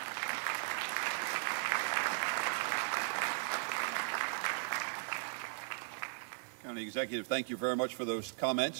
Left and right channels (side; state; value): left; silent; digital silence